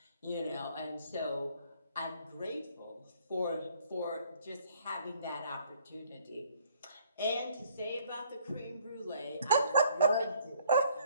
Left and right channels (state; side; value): inverted; both; correlation -0.62